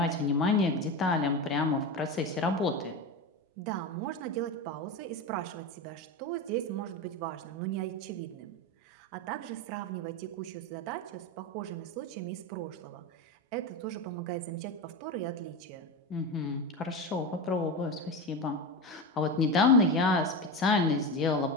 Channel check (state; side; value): normal; both; correlation 0.20